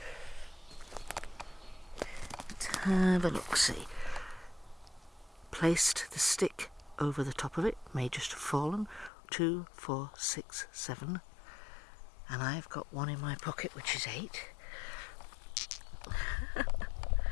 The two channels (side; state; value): right; drops out; at 9.1 s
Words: Let's have a look, see. Placed the stick over the top of it, may just have fallen. 2, 4, 6, 7. And I've got one in my pocket, which is 8.